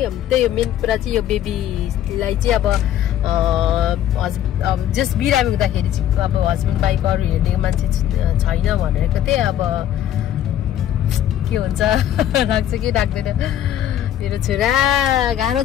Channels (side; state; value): right; quieter; 11.3 dB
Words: त्यही हो मेन कुरा चाहिँ यो बेबीलाई चाहिँ अब जस बिरामी हुँदाखेरि चाहिँ अब हस्बेन्ड बाइक अरू हेर्ने मान्छे छैन भनेको थिएँ अब के हुन्छ राख्छ कि राख्दैन मेरो छोरा गाह्रो